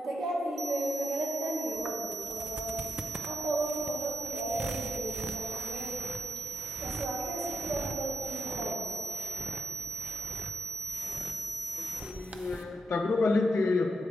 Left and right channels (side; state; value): both; normal; correlation 0.84